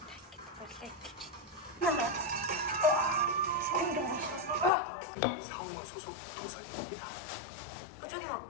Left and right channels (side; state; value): right; drops out; at 4.7 s